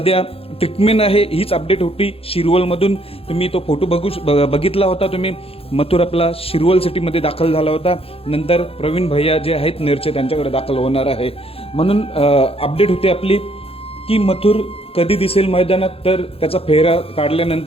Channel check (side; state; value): right; late; 0.28 ms